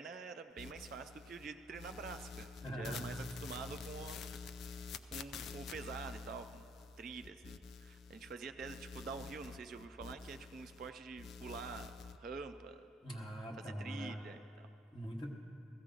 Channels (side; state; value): both; normal; correlation 0.65